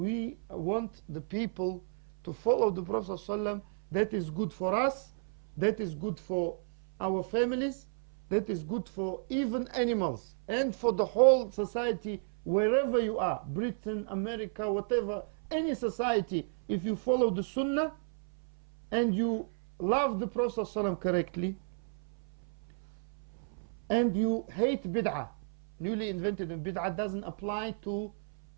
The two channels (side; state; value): left; silent; 56 dB below the other